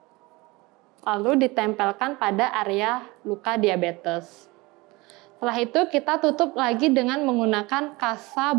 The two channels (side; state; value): left; quieter; 23.0 dB